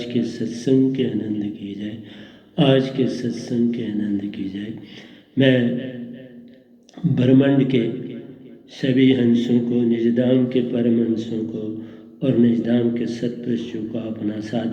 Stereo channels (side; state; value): both; identical; correlation 1.00